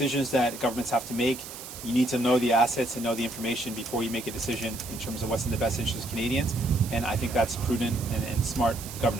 that governments have to make, you need to know the assets and know the information before you make a decision in terms of what's in the best interest of Canadians, and I think that's prudent and smart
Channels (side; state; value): right; noise; hiss, 12 dB below the sound